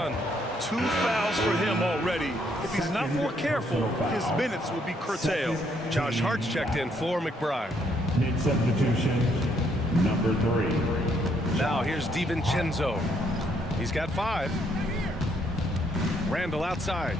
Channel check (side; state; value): both; normal; correlation 0.71